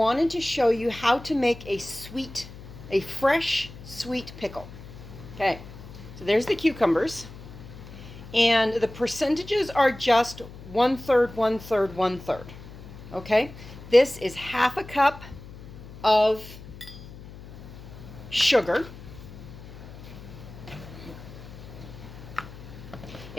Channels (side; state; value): left; noise; hum, 15 dB below the sound